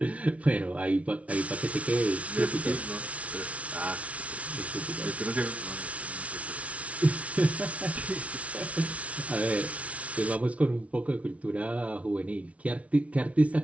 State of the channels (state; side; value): late; left; 0.065 ms